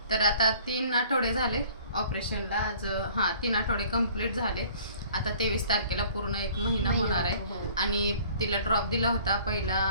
तर आता 3 आठवडे झाले ऑपरेशनला, आज 3 आठवडे कंप्लीट झाले। आता 23 तारखेला पूर्ण 1 महिना होणार आहे आणि तिला ड्रॉप दिला होता। पहिला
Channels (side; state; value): both; inverted; correlation -0.52